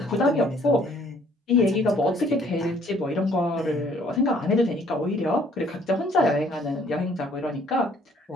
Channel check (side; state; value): both; normal; correlation 0.61